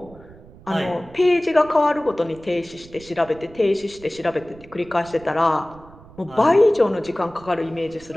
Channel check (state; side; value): noise; right; rumble, 22 dB below the sound